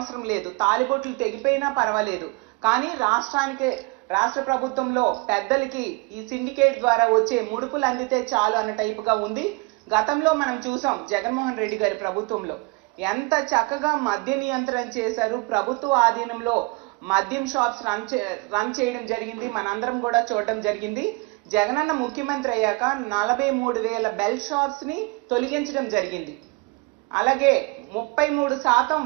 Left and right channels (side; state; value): left; quieter; 26.8 dB